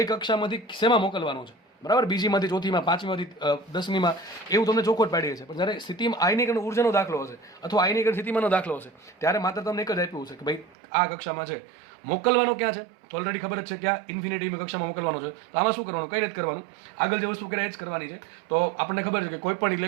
કક્ષામાંથી શેમાં મોકલવાનો છે. બરાબર, બીજીમાંથી ચોથીમાં, પાંચમીમાંથી 10મીમાં, એવું તમને ચોખવટ પાડી છે. પણ જ્યારે સ્થિતિમાં આયનીકરણ ઉર્જાનો દાખલો હશે અથવા આયનીકરણ સ્થિતિમાનનો દાખલો હશે ત્યારે માત્ર તમને એક જ આપ્યું છે કે ભાઈ આ કક્ષામાં છે, મોકલવાનો ક્યાં છે તો ઓલરેડી ખબર જ છે ક્યાં ઇન્ફિનિટીની કક્ષામાં મોકલવાનો છે. તો આમાં શું કરવાનું? કંઈ નથી કરવાનું, આગળ જે વસ્તુ કરે એ જ કરવાની છે. તો આપણને ખબર છે કે કોઈ પણ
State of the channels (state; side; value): drops out; left; at 10.8 s